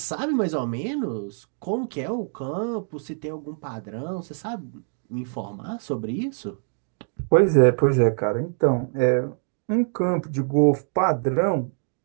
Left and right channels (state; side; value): silent; left; digital silence